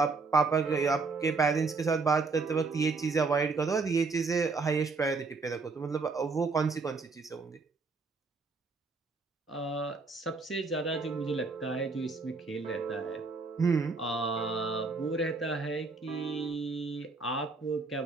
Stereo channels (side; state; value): left; quieter; 4.2 dB